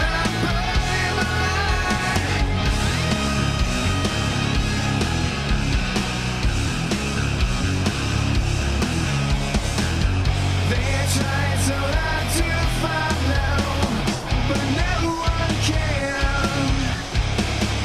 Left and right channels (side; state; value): both; identical; correlation 1.00